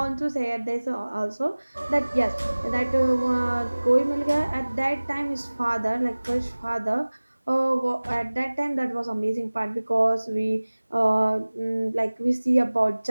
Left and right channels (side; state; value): both; inverted; correlation -1.00